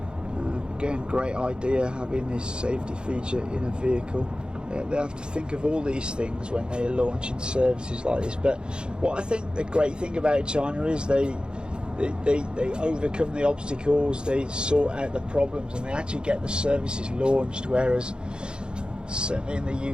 Again, great idea having this safety feature in a vehicle. They have to think of all these things when they're launching services like this. But what I think the great thing about China is they overcome the obstacles, they sort out the problems, and they actually get the services launched, whereas certainly in the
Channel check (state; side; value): late; left; 0.050 ms